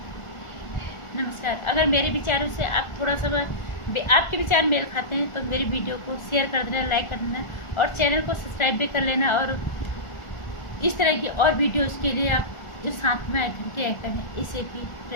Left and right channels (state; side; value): late; right; 1.4 ms